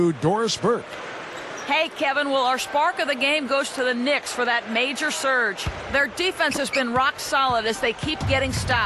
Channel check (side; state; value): both; identical; correlation 1.00